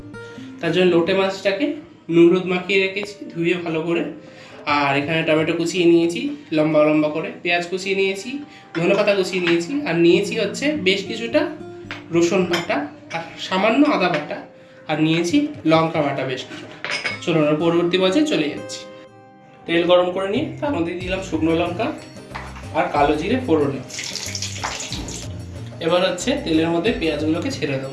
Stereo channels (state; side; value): identical; both; correlation 1.00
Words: তার জন্য লোটে মাছটাকে নুন হলুদ মাখিয়ে রেখেছি, ধুয়ে ভালো করে। আর এখানে টমেটো কুচিয়ে নিয়েছি লম্বা লম্বা করে, পেঁয়াজ কুচিয়ে নিয়েছি, ধনেপাতা কুচিয়ে নিয়েছি, আর নিয়েছি হচ্ছে বেশ কিছুটা রসুন বাটা আর সামান্য আদা বাটা, আর নিয়েছি লঙ্কা বাটা বেশ কিছুটা। চলুন পরবর্তী পর্যায়ে চলে যাচ্ছি। তেল গরম করে নিয়ে তার মধ্যে দিলাম শুকনো লঙ্কা আর কালো জিরে ফোড়নে। এবার হচ্ছে তেলের মধ্যে পেঁয়াজগুলোকে ছেড়ে